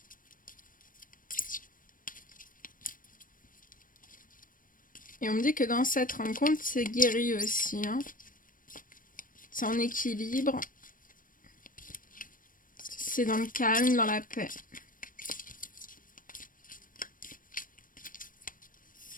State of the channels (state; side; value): late; right; 0.40 ms